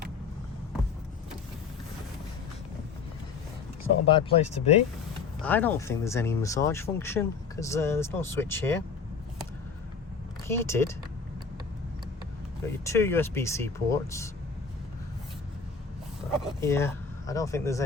It's not a bad place to be. I don't think there's any massage function because there's no switch here. Heated. Got your two USB-C ports. Yeah, I don't think there's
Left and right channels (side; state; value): right; quieter; 5.2 dB